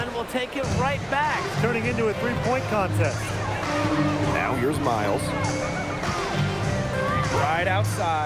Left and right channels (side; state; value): both; identical; correlation 1.00